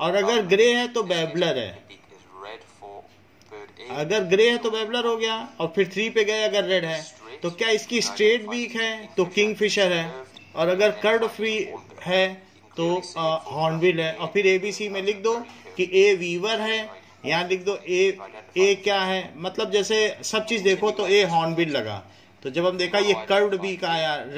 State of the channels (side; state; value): both; identical; correlation 1.00